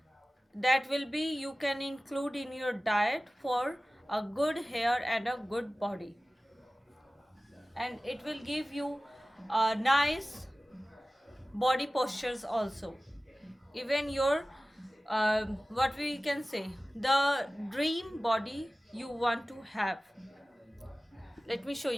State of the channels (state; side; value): normal; both; correlation 0.97